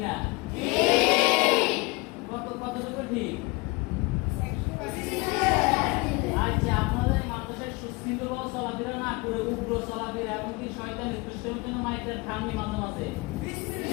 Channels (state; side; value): quieter; right; 25.4 dB